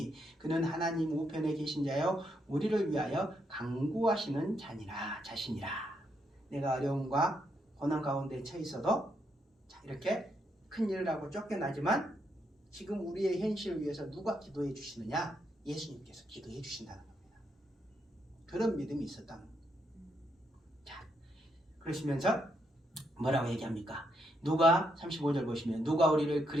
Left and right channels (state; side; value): normal; both; correlation 0.78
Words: 그는 하나님 우편에 계신 자요 우리를 위하여 강구하시는 자신이라. 내가 어려움과 고난 가운데 처해 있어도, 자, 이렇게 큰 일을 하고 쫓겨나지만 지금 우리의 현실을 위해서 누가 기도해 주시느냐? 예수님께서 기도해 주신다는 겁니다. 그런 믿음이 있었다는 겁니다. 자, 그러시면서 뭐라고 얘기합니까? 누가 35절 보시면 누가 우리를